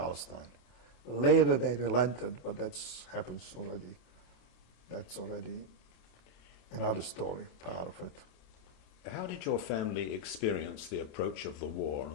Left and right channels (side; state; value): right; late; 27 ms